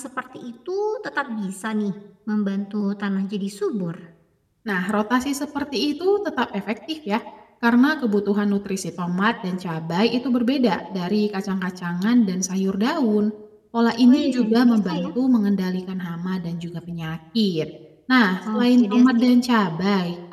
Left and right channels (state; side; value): identical; both; correlation 1.00